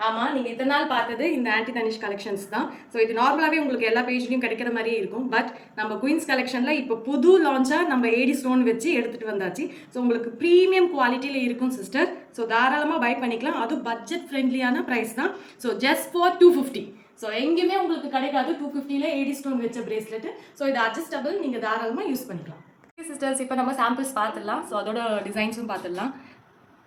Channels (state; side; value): identical; both; correlation 1.00